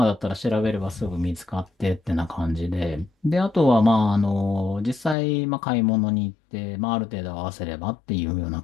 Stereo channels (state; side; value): drops out; right; at 5.2 s